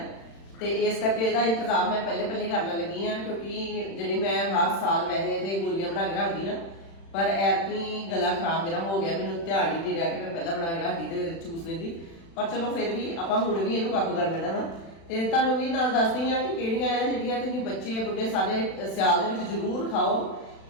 ਤੇ ਇਸ ਕਰਕੇ ਇਹਦਾ ਇੰਤਜ਼ਾਮ ਮੈਂ ਪਹਿਲੇ ਕਰਨ ਲੱਗੀ ਆ, ਕਿਉਂਕਿ ਜਿਹੜੀ ਮੈਂ ਹਰ ਸਾਲ ਵੈਸੇ ਤੇ ਗੋਲੀਆਂ ਬਣਾ ਕੇ ਰੱਖਦੀ ਆ, ਪਰ ਐਤਕੀ ਗਲਾ ਖਰਾਬ ਮੇਰਾ ਹੋ ਗਿਆ। ਮੈਨੂੰ ਧਿਆਨ ਹੀ ਨਹੀਂ ਰਿਹਾ ਕਿ ਮੈਂ ਪਹਿਲਾਂ ਬਣਾ ਕੇ ਰੱਖਦੀ ਤੇ ਚੂਸ ਲੈਂਦੀ, ਪਰ ਚਲੋ ਫਿਰ ਵੀ ਆਪਾਂ ਹੁਣ ਵੀ ਇਹਨੂੰ ਕਾਬੂ ਕਰ ਲੈਣਾ ਵਾ। ਤੇ ਤੁਹਾਨੂੰ ਵੀ ਨਾਲ ਦੱਸਦੀ ਆ ਕਿ ਕਿਹੜੀਆਂ ਆ ਜਿਹੜੀਆਂ ਤੁਸੀਂ ਬੱਚੇ ਬੁੱਢੇ ਸਾਰੇ ਸਿਆਲ ਦੇ ਵਿੱਚ ਜ਼ਰੂਰ ਖਾਓ,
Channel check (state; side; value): late; right; 36 ms